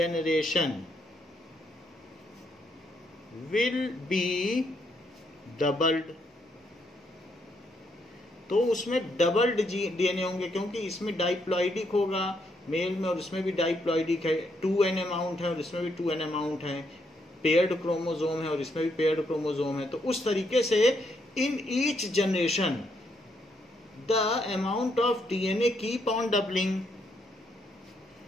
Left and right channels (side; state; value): both; normal; correlation 0.75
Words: will be doubled. तो उसमें डबल्ड डीएनए होंगे क्योंकि इसमें डाइप्लॉइडिक होगा मेल में और इसमें भी डाइप्लॉइडिक है. 2n अमाउंट है और इसमें भी 2n अमाउंट है. पेयर्ड क्रोमोसोम है और इसमें भी पेयर्ड क्रोमोसोम है. तो उस तरीके से in each generation the amount of DNA keep on doubling.